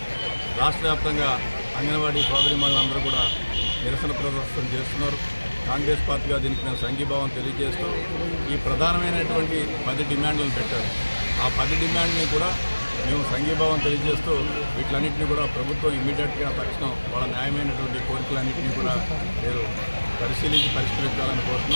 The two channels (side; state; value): both; inverted; correlation -1.00